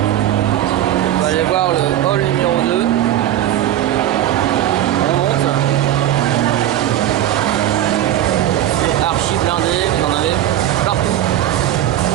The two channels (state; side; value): quieter; left; 12.3 dB